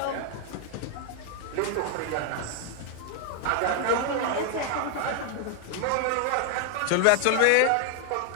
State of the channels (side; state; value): both; different; correlation 0.00